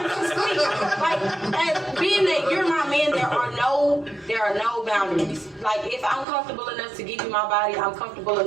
to sleep. Like, as being that you're my man, there are no boundaries. Like, if I'm comfortable enough to give you my body, I'm comfortable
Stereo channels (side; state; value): left; drops out; at 6.2 s